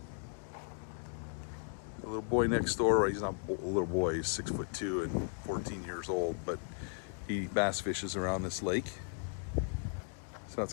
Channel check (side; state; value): right; silent; 54 dB below the other